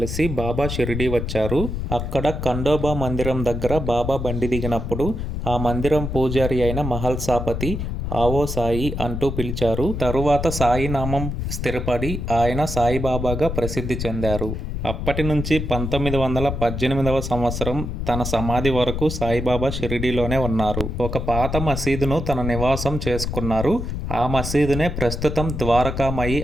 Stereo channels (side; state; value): left; noise; rumble, 4 dB below the sound